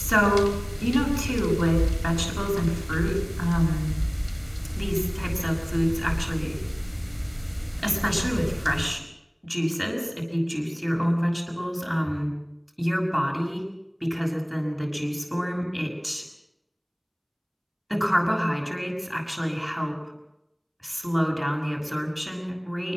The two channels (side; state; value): both; identical; correlation 1.00